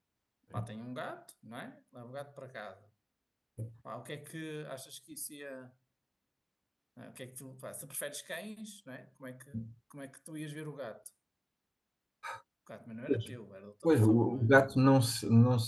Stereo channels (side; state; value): both; identical; correlation 1.00